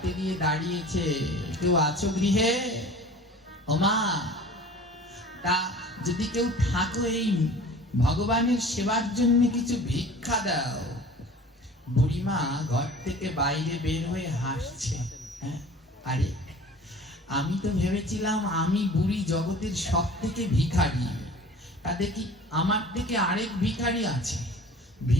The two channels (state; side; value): normal; both; correlation 0.43